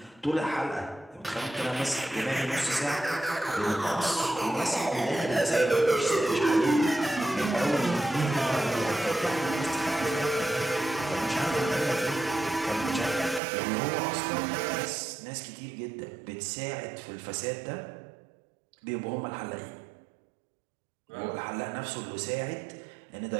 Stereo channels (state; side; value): drops out; left; at 13.4 s